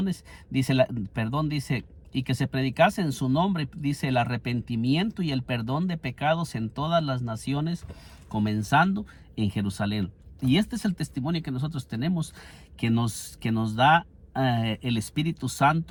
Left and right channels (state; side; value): identical; both; correlation 1.00